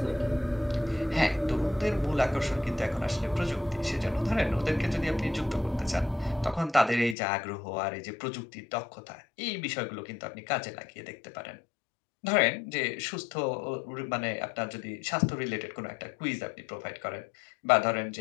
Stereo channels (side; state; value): right; drops out; at 7.2 s